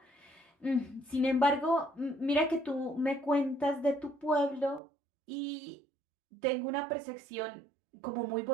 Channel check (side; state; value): left; drops out; at 4.8 s